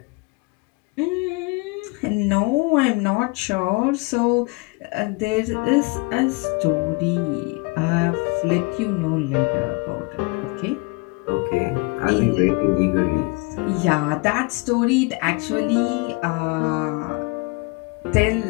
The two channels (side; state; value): right; quieter; 27.6 dB